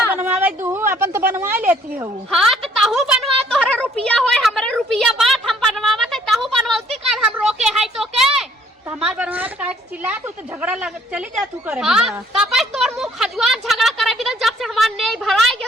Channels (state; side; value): normal; both; correlation 0.62